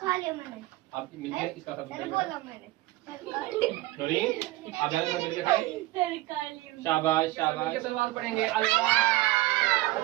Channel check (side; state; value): left; quieter; 18.4 dB